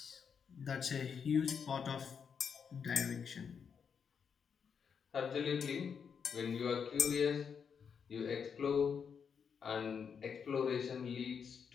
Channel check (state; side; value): quieter; right; 6.7 dB